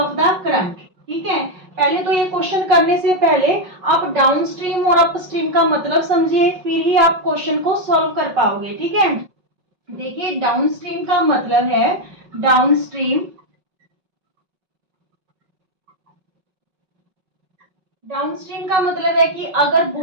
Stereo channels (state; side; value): late; left; 5.4 ms